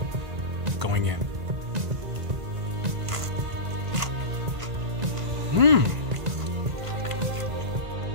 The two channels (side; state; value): left; late; 1.5 ms